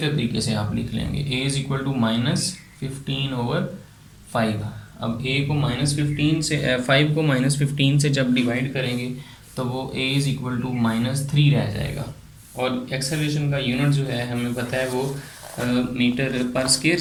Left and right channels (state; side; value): identical; both; correlation 1.00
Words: तरीके से आप लिख लेंगे। A is equal to -15 over 5। अब ए को -15 से 5 को -15 से जब डिवाइड करेंगे तो वो ए इज़ इक्वल टू -3 रह जाएगा। और एक्सेलरेशन का यूनिट जो है हमें पता है वो मीटर पर स्क्वायर